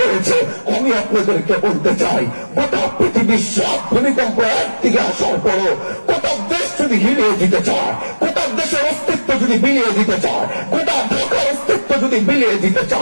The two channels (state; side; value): inverted; both; correlation -1.00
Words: রয়েছে। আমি আপনাদেরকে বলতে চাই, গোটা পৃথিবীর সব ভূমিকম্প একদিকে আসার পরও গোটা দেশ যদি হিলিয়ে দিতে চায়, গোটা দেশের অস্তিত্ব যদি বিলিয়ে দিতে চায়, গোটা ঢাকার অস্তিত্ব যদি বিলিয়ে দিতে